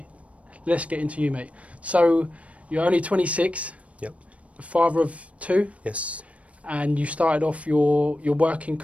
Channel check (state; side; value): late; left; 0.064 ms